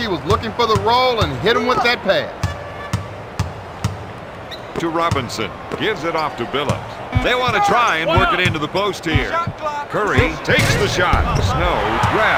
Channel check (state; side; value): identical; both; correlation 1.00